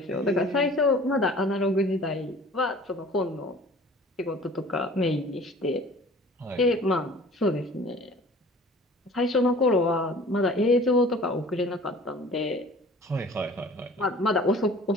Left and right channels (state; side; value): normal; both; correlation 0.47